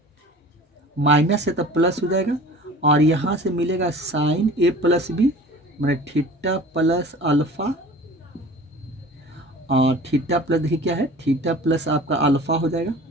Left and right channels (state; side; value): normal; both; correlation 0.42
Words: माइनस है तो प्लस हो जाएगा, और यहाँ से मिलेगा साइन ए प्लस बी, मतलब थीटा प्लस अल्फा, और थीटा प्लस देखिए क्या है, थीटा प्लस आपका अल्फा हो जाएगा,